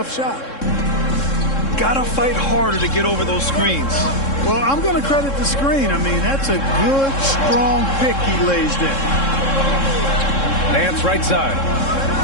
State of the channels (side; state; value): right; late; 3.7 ms